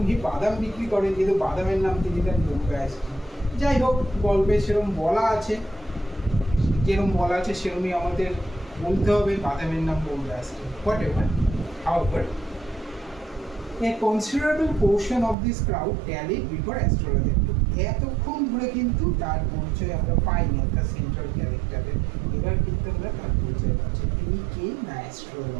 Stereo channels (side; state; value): left; drops out; at 15.4 s